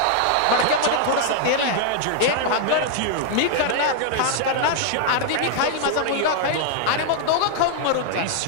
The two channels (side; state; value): both; different; correlation 0.00